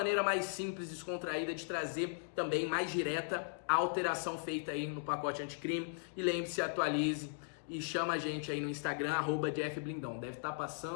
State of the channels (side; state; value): right; silent; digital silence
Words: mais simples, descontraída de trazer também mais direta a alteração feita aí no pacote anticrime. E lembre-se, atualize e chama a gente aí no Instagram, @JeffBlindão. Deve estar